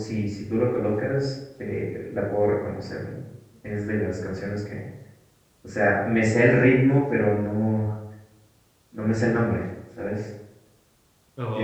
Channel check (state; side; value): identical; both; correlation 1.00